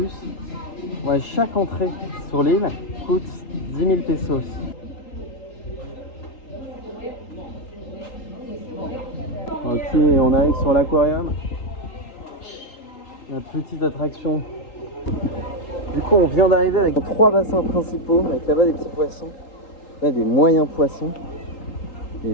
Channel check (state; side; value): late; right; 3.8 ms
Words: Ouais, chaque entrée sur l'île coûte 10 000 pesos. Ok, on arrive sur l'aquarium. La petite attraction. Du coup, on vient d'arriver avec 3 bassins principaux, avec là-bas des petits poissons, là des moyens poissons, et